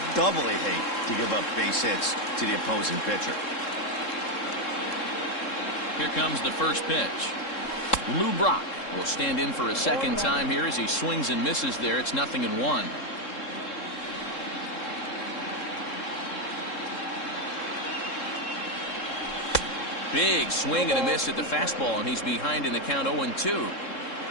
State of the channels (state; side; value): late; right; 3.7 ms